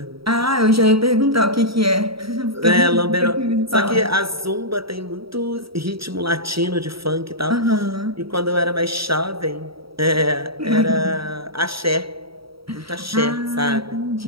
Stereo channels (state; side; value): late; left; 0.75 ms